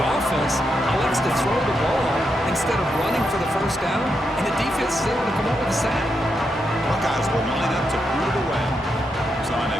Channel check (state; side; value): normal; both; correlation 0.83